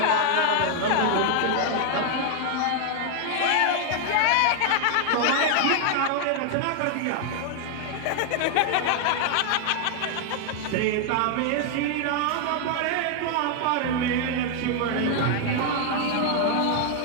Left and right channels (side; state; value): both; different; correlation 0.00